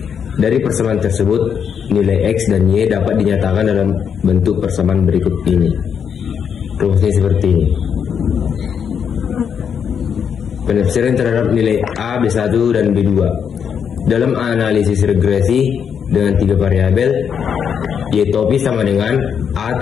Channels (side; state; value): right; quieter; 7.4 dB